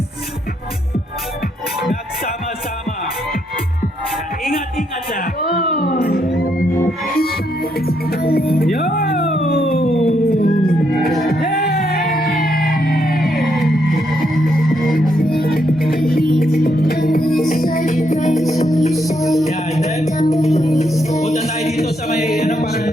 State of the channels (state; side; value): normal; both; correlation 0.77